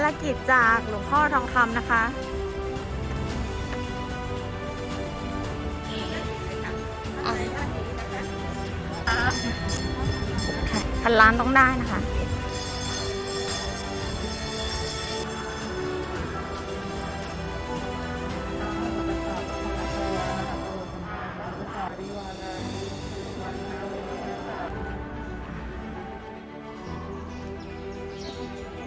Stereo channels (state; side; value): identical; both; correlation 1.00